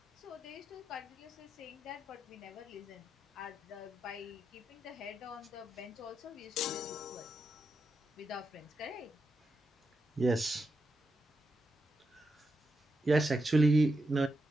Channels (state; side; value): normal; both; correlation 0.86